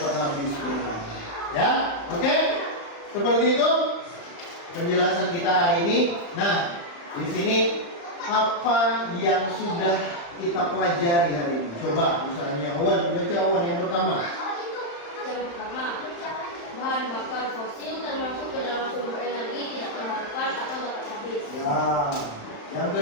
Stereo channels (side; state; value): right; late; 35 ms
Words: habis. Ya, oke? Seperti itu penjelasan kita hari ini. Nah, di sini apa yang sudah kita pelajari hari ini? Coba misalnya Wan, baca Wan yang pertama. Yang pertama, bahan bakar fosil termasuk ke dalam sumber energi tidak terbarukan atau dapat habis. Ya. Yang